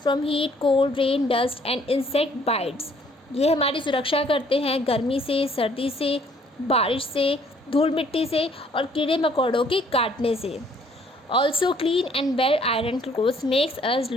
from heat, cold, rain, dust and insect bytes, ये हमारी सुरक्षा करते हैं गर्मी से, सर्दी से, बारिश से, धूल मिट्टी से और कीड़े मकोड़ों के काटने से। Also clean and well iron clothes makes us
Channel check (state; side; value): normal; both; correlation 0.62